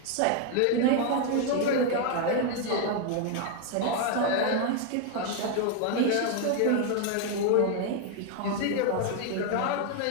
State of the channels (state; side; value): different; both; correlation 0.01